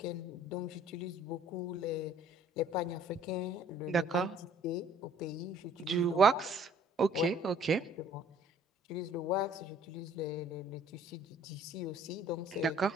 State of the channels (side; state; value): both; normal; correlation 0.55